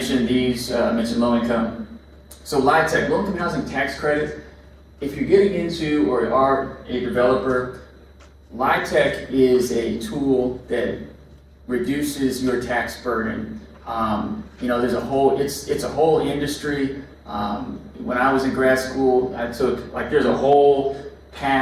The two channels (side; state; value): both; identical; correlation 1.00